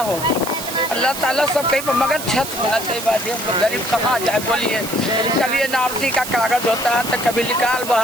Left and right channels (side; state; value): right; noise; hiss, 8 dB below the sound